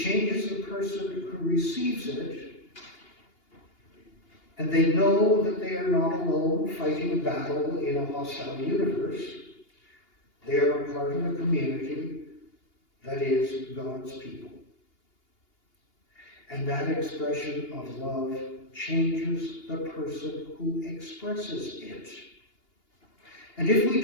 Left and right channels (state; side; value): late; right; 2.8 ms